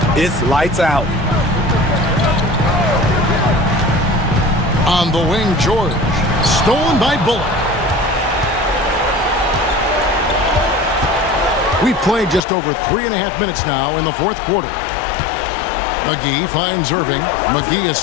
it's lights out. On the wing, George. Stolen by Bullock. We've played just over 3.5 minutes now in the fourth quarter. McGee finds Irving. McGee is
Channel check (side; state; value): right; drops out; at 12.5 s